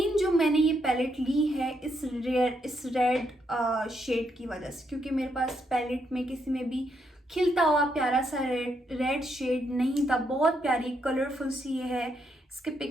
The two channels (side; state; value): both; normal; correlation 0.77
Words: जो मैंने ये पैलेट ली है इस रेड शेड की वजह से, क्योंकि मेरे पास पैलेट में किसी में भी खिलता हुआ प्यारा सा रेड शेड नहीं था। बहुत प्यारी कलरफुल सी ये है। इसके